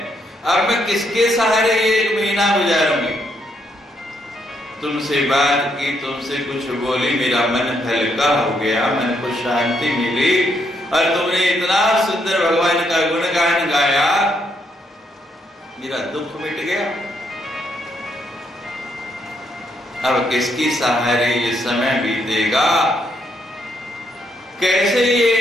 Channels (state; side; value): normal; both; correlation 0.76